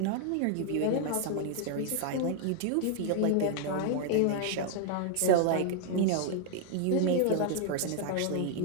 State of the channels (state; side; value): different; both; correlation 0.00